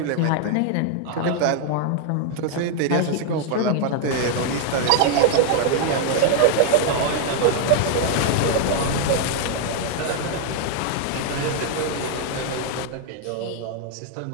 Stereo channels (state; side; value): different; both; correlation 0.00